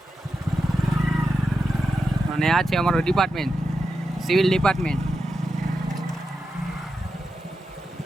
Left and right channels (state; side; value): normal; both; correlation 0.89